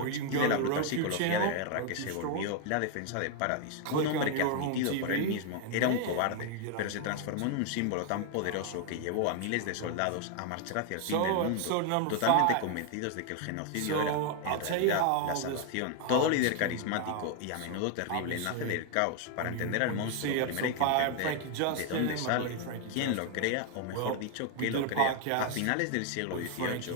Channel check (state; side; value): different; both; correlation 0.00